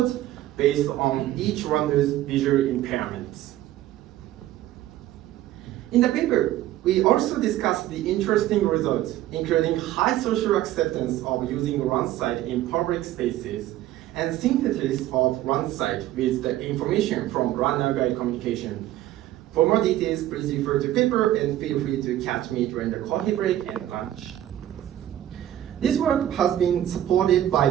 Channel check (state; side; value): quieter; left; 13.4 dB